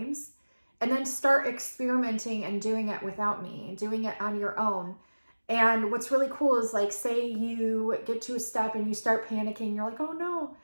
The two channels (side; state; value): both; inverted; correlation -1.00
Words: and then start experimenting and doing it without me and doing it on your own. And what's really cool is like, say you get to a step and you start panicking. You're like, oh no,